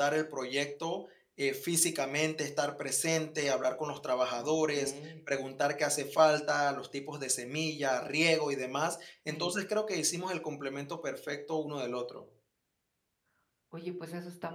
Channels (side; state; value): both; identical; correlation 1.00